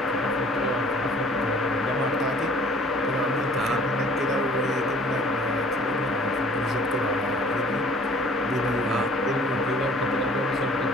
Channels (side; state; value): both; normal; correlation 0.53